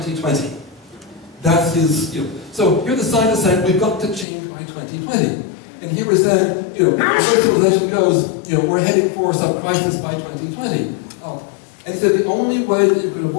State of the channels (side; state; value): right; drops out; at 4.2 s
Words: That's his, So here the scientists saying, we've got to change by 2020. And here we're saying, where civilization goes, we're heading for some crisis by 2020. And he said the only way that you can